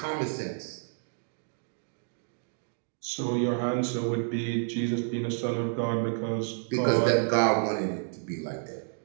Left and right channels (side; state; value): left; silent; 58 dB below the other